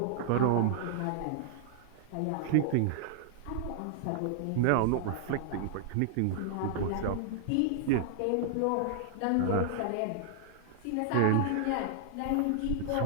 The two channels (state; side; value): different; both; correlation -0.01